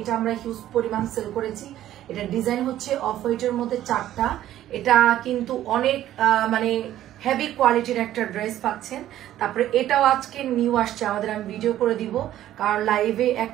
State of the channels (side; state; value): left; quieter; 12.8 dB